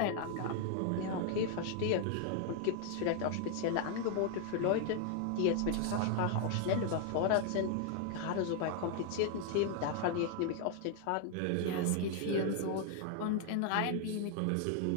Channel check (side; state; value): both; different; correlation 0.00